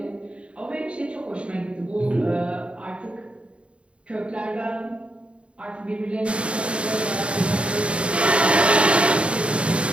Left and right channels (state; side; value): late; left; 0.059 ms